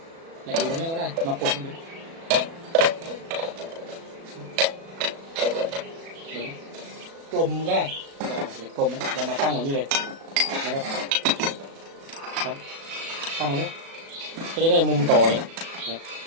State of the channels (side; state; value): left; late; 36 ms